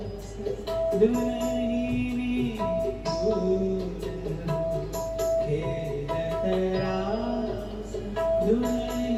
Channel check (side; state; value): both; identical; correlation 1.00